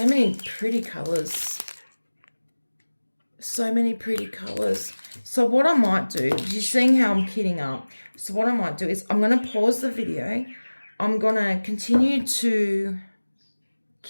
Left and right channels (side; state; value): both; inverted; correlation -1.00